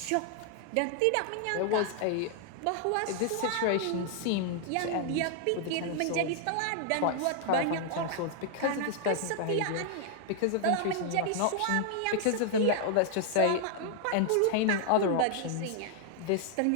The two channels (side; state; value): both; different; correlation 0.00